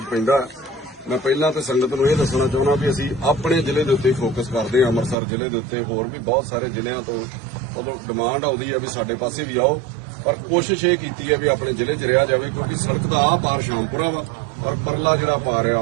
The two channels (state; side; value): drops out; left; at 5.2 s